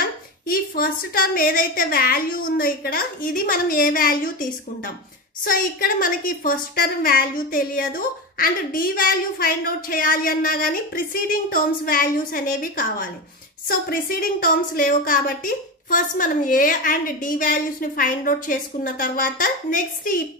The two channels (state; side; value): normal; both; correlation 0.20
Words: ఈ ఫస్ట్ టర్మ్ ఏదైతే వాల్యూ ఉందో ఇక్కడ ఇది మనం ఏ వాల్యూ తీసుకుంటాం. సో ఇక్కడ మనకి ఫస్ట్ టర్మ్ వాల్యూ తెలియదు and D value find out చేయాలి అన్నా కానీ ప్రిసీడింగ్ టర్మ్స్ వాల్యూస్ అనేవి కావాలి. సో ప్రిసీడింగ్ టర్మ్స్ లేవు కాబట్టి ఫస్ట్ మనం ఏ అండ్ డి వాల్యూస్ ని ఫైండ్ అవుట్ చేసుకున్న తర్వాత నెక్స్ట్ ఈ